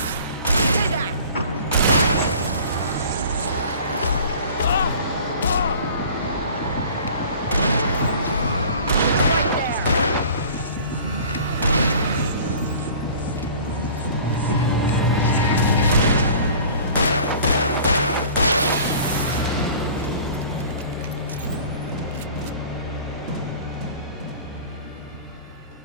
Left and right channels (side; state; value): both; inverted; correlation -0.45